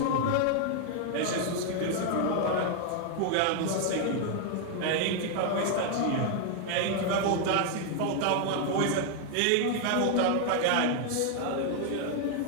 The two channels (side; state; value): both; different; correlation 0.00